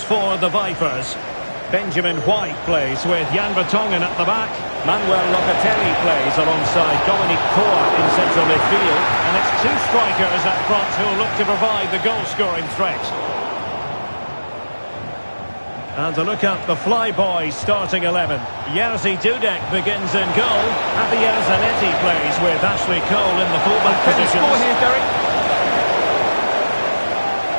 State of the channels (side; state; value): both; inverted; correlation -1.00